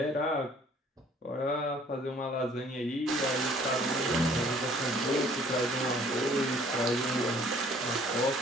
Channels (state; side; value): normal; both; correlation 0.56